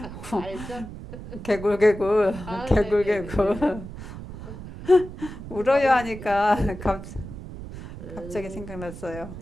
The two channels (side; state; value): right; noise; rumble, 12 dB below the sound